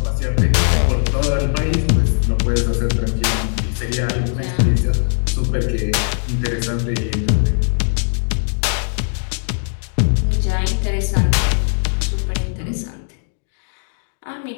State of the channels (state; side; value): silent; right; digital silence